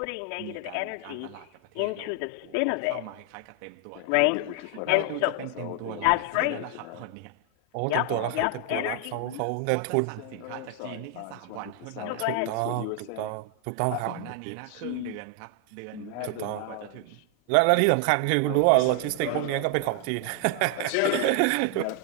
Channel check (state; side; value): different; both; correlation 0.00